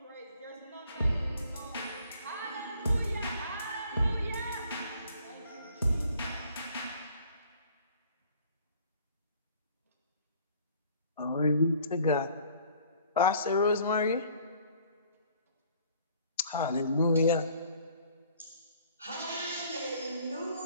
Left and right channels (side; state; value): both; inverted; correlation -0.56